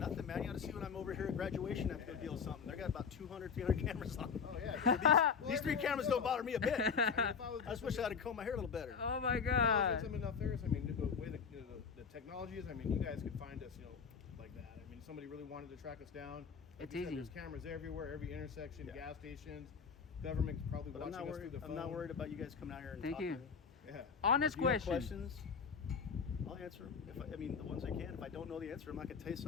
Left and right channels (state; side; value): quieter; right; 6.1 dB